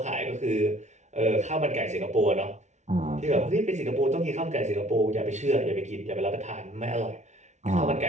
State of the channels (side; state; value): left; late; 0.33 ms